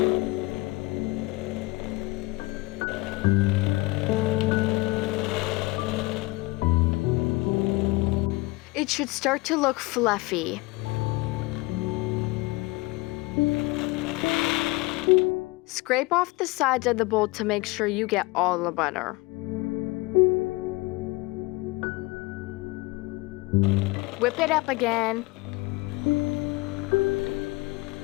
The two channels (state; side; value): quieter; right; 22.8 dB